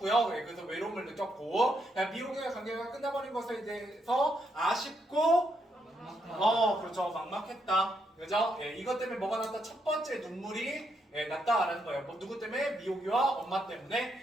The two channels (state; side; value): normal; both; correlation 0.78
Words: 그래서 외로움을 느꼈고 미국의 관계가 끝나버린 것에 대해서 아쉽고 그렇죠. 막막했다. 그죠? 이것 때문에 뭐가 났다? 첫 번째 눈물이 났다라는 거예요. 누구 때문에? 미호기와 엄마